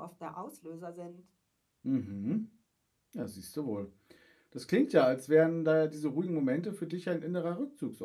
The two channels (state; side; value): identical; both; correlation 1.00